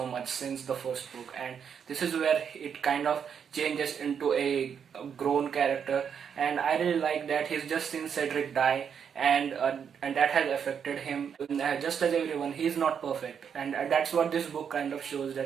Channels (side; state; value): left; quieter; 7.4 dB